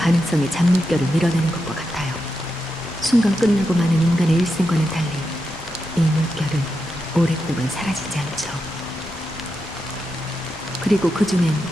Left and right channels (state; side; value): normal; both; correlation 0.87